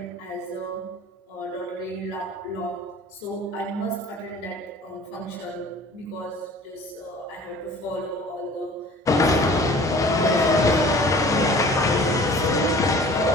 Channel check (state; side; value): normal; both; correlation 0.47